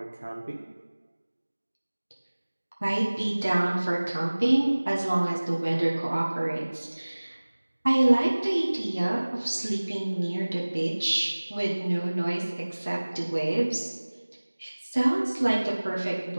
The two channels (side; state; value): both; inverted; correlation -1.00